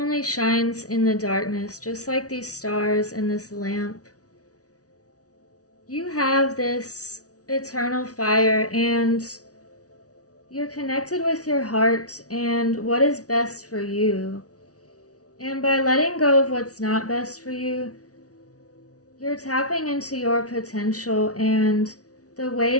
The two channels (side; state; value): right; late; 0.67 ms